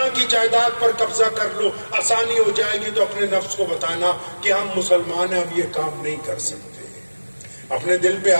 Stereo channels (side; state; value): both; inverted; correlation -1.00